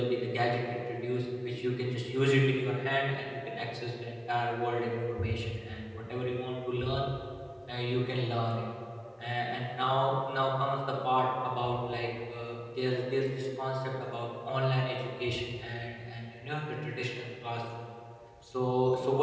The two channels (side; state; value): both; identical; correlation 1.00